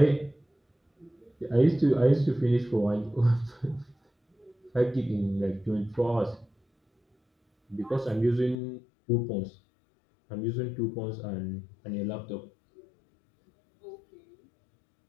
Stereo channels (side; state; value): right; drops out; at 8.6 s